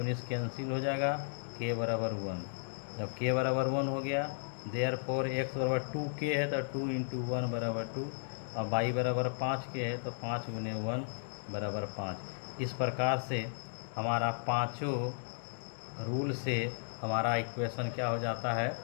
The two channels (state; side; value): silent; right; digital silence